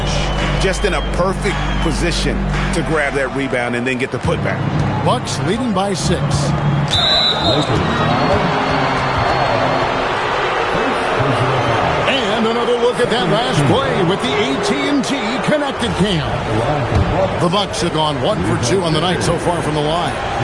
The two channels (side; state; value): both; identical; correlation 1.00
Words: Just in a perfect position to grab that rebound and then get the putback. Bucks leading by 6. And another look at that last play with the AT&T connected cam. The Bucks have gone 1 for 2 on the night so far from the line.